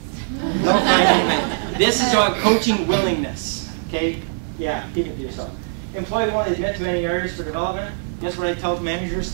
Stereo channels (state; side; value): silent; left; 58 dB below the other